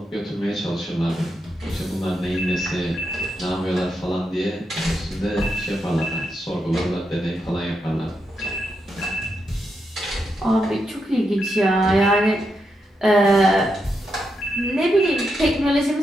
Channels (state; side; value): normal; both; correlation 0.84